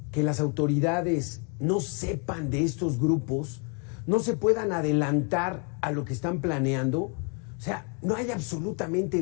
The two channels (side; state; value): right; quieter; 37.6 dB